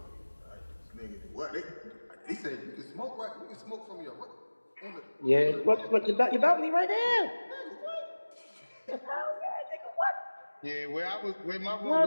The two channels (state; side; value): inverted; both; correlation -1.00